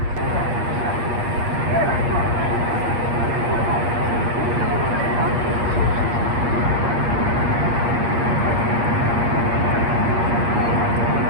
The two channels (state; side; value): late; left; 8.5 ms